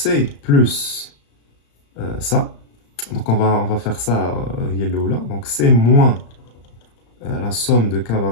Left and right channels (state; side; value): late; right; 35 ms